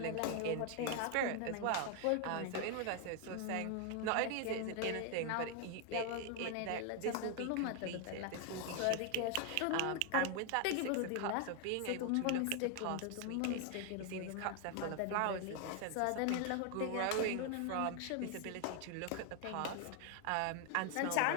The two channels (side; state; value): both; different; correlation 0.00